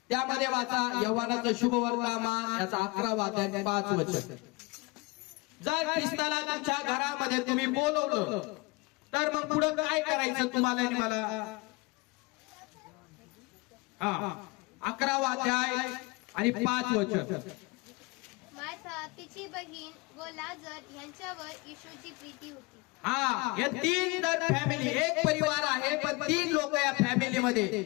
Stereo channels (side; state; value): right; quieter; 25.5 dB